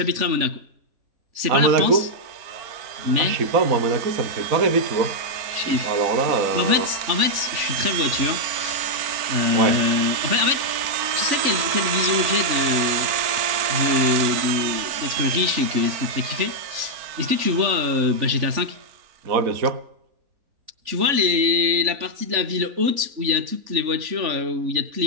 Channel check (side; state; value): left; late; 3.5 ms